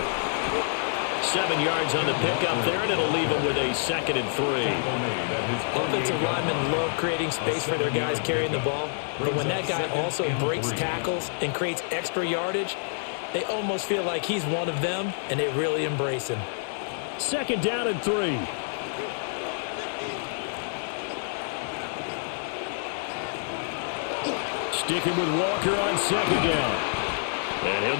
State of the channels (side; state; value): right; silent; digital silence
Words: 7 yards on the pickup there, and it'll leave them with a 2nd and 3. Offensive linemen love creating space for their guys carrying the ball, but when that guy also breaks tackles and creates extra yardage, they almost feel like he's one of them, and they really embrace him. 2nd down and 3. Sticking with Walker on 2nd down. And he'll